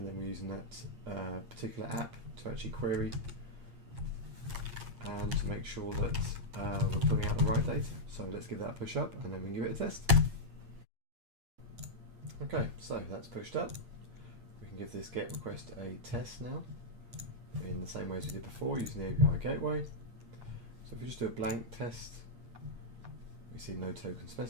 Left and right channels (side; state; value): left; late; 8.6 ms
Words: then we're using that particular app to actually query and to make sure that we're pulling out the right data. So let's give that a push up, and then we can give it a test. Okay, so that's pushed up. We can give this GET request a test now in the same way as we did before using the API gateway. So if we just do a blank test, we see no token